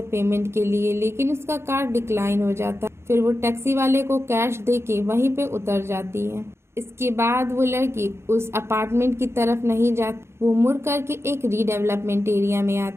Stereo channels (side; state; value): left; late; 0.12 ms